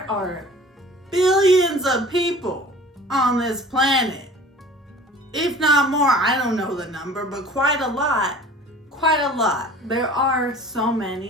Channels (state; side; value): normal; both; correlation 0.44